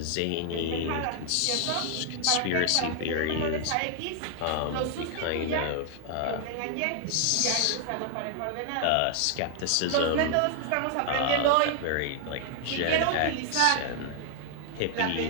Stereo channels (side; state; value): both; different; correlation 0.00